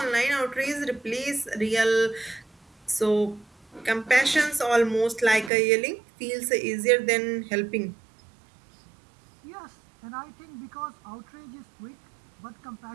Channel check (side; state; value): left; drops out; at 5.5 s